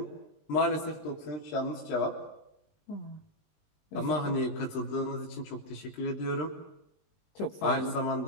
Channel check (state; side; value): late; right; 20 ms